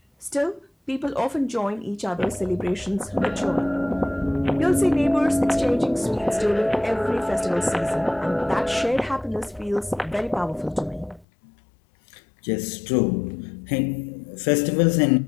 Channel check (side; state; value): right; drops out; at 11.2 s